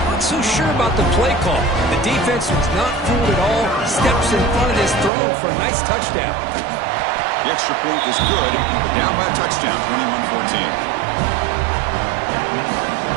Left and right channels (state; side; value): drops out; left; at 5.1 s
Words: Not so sure about the play call. The defense was not fooled at all. Steps in front of this throw for a nice touchdown. The extra point is good, but down by a touchdown, 21-14.